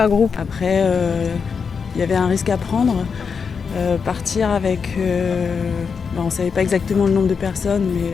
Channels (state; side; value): quieter; right; 5.8 dB